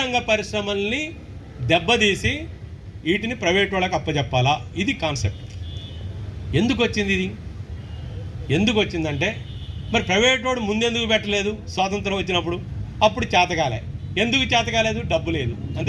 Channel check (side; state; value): both; identical; correlation 1.00